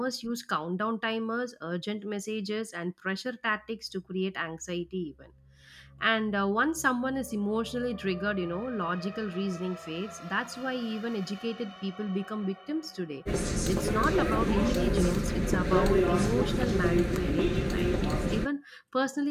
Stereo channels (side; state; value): both; identical; correlation 1.00